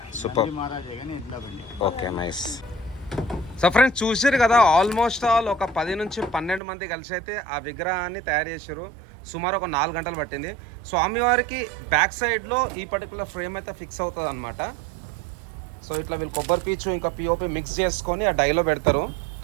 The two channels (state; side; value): drops out; left; at 6.6 s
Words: సూపర్. నంది మహారాజే కానీ ఎడ్ల బండి. Okay, nice. సో ఫ్రెండ్స్ చూసారు కదా, ఆల్మోస్ట్ ఆల్ ఒక 10 నుంచి 12 మంది కలిసి అయితే ఆ విగ్రహాన్ని తయారు చేశారు. సుమారు ఒక 4 గంటలు పట్టింది. స్వామివారికి బ్యాక్ సైడ్లో ఈ పర్టికులర్ ఫ్రేమ్ అయితే ఫిక్స్ అవుతుంది అనమాట. సో ఇట్లా వీళ్ళు కొబ్బరి పీచు ఇంకా పిఓపి మిక్స్ చేసుకొని ఆ డైలో పెడతారు.